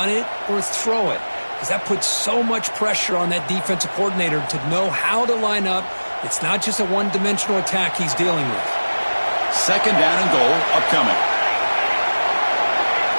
it or throw it, because that puts so much pressure on that defensive coordinator to know how to line up. It's not just a one-dimensional attack he's dealing with. 2nd down and goal upcoming.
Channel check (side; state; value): both; inverted; correlation -1.00